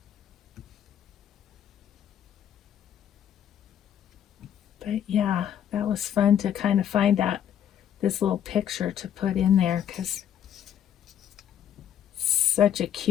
But yeah, that was fun to kind of find this little picture to put in there, because such a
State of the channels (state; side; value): quieter; right; 9.7 dB